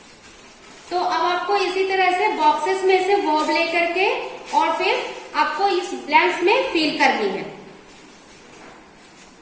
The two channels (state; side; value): identical; both; correlation 1.00